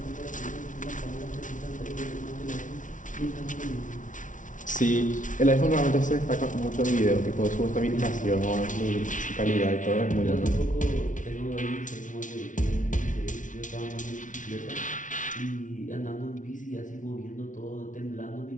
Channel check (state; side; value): late; right; 0.37 ms